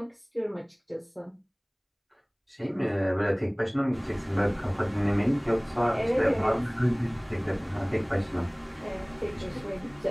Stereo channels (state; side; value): identical; both; correlation 1.00